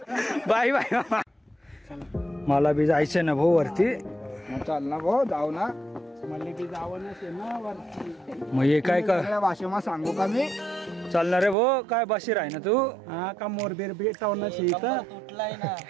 Bye bye. मला बी जायचंय ना भाऊ वरती. चाल ना भाऊ, जाऊ ना. मला बी जावं ना वरती. मग हे काय का सगळ्या भाषेमा सांगू का मी? चालणार रे भाऊ? काय बशीर आहे ना तू? हा का मोरबीर भेटावं तुटलाय ना.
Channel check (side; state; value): left; drops out; at 11.6 s